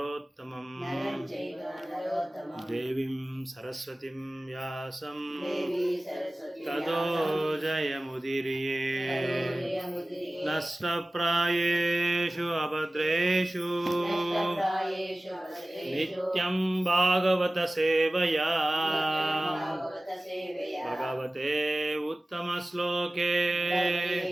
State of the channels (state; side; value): normal; both; correlation 0.97